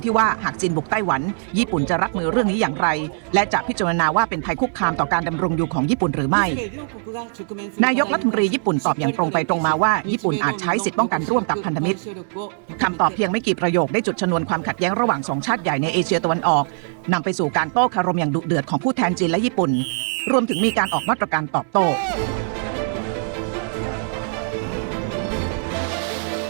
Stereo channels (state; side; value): silent; left; 65 dB below the other